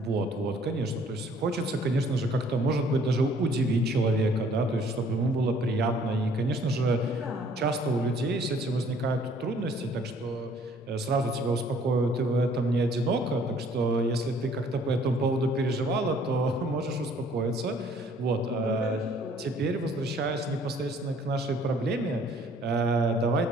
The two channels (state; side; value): normal; both; correlation 0.59